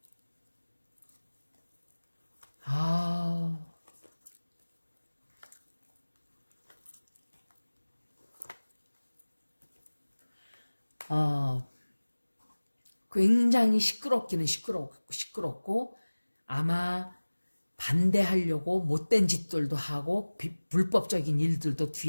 굉장히 시끄럽기는 시끄럽고 아마 반대하려고 못된 짓들도 하고 불법적인 일들도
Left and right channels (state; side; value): inverted; both; correlation -1.00